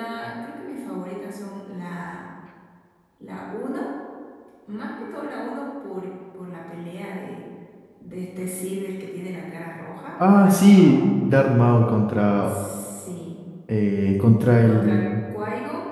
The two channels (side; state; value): both; identical; correlation 1.00